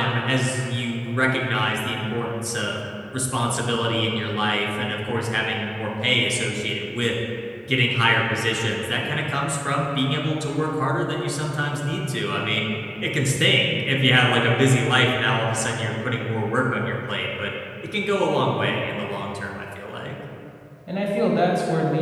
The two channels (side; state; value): both; identical; correlation 1.00